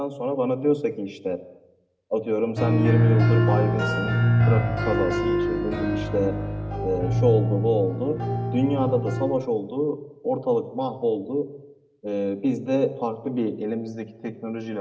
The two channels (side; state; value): both; identical; correlation 1.00